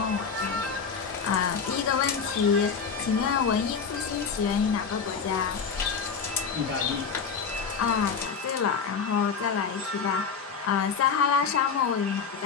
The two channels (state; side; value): quieter; right; 6.0 dB